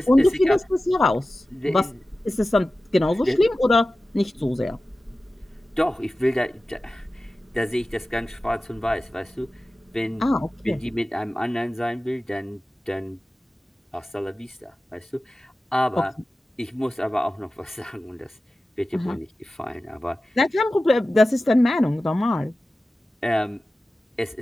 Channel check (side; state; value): both; normal; correlation 0.95